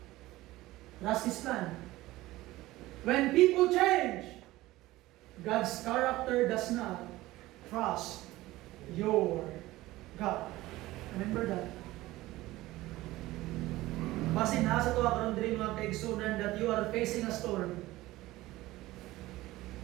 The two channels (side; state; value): left; quieter; 17.7 dB